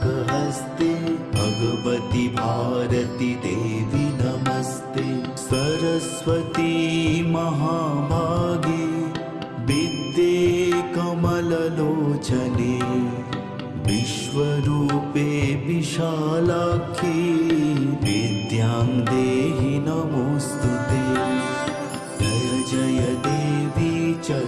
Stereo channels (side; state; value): both; identical; correlation 1.00